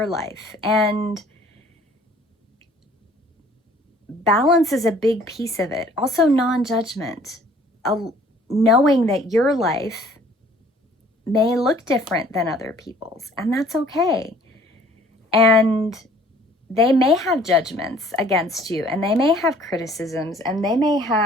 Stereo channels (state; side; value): normal; both; correlation 0.55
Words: life. And balance is a big piece of it. Also, non-judgment, knowing that your life may look different than other people's, and that's okay. And they may have judgments against you, and they may have criticisms, and they may